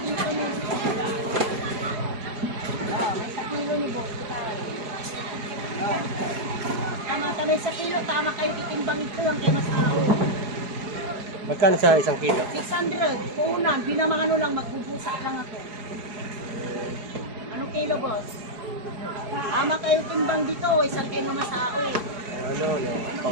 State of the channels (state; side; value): late; left; 4.8 ms